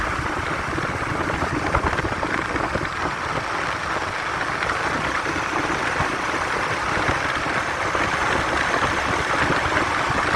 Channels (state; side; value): identical; both; correlation 1.00